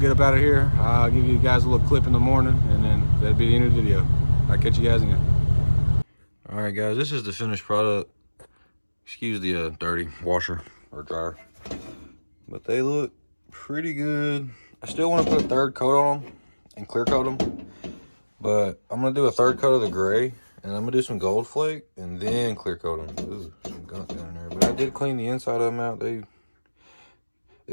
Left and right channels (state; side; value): inverted; both; correlation -1.00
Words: up out of here. I'll give you guys a little clip in the morning, and then that'll be the end of the video. I'll catch you guys again. All right, guys, this is the finished product. Excuse the dirty washer or dryer, but they look pretty good. I still want to put a third coat on them and clear coat them, but I'm gonna do a third coat of the gray, and I'm gonna do some gold flake and then clear coat them. Ooh, some gunk down there, but I did clean the inside of them out.